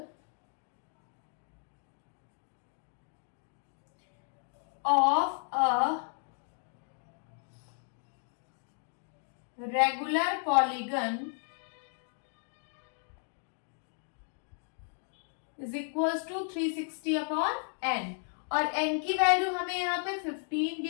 of a regular polygon is equals to 360 upon n, और n की वैल्यू हमें यहाँ पे 15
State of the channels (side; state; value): right; silent; 55 dB below the other